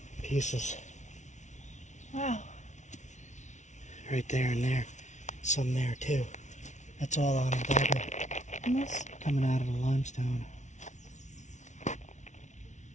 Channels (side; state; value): right; late; 0.35 ms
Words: pieces. Wow. Right there and there. Some there too. That's all on a dagger. And this? Coming out of the limestone.